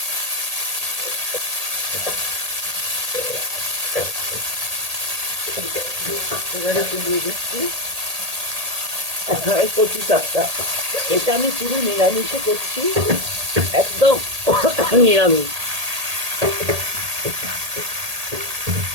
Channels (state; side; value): late; left; 1.8 ms